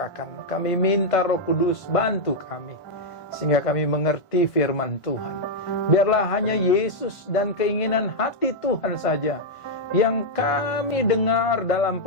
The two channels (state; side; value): late; right; 1.5 ms